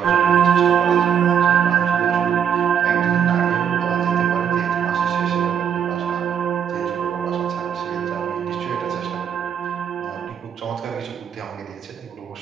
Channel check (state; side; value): quieter; left; 8.1 dB